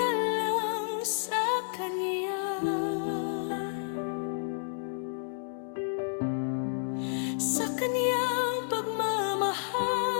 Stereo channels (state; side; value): silent; right; digital silence